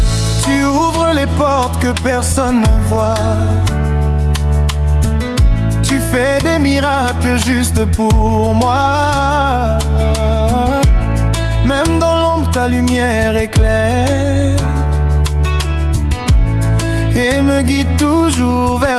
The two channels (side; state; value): both; identical; correlation 1.00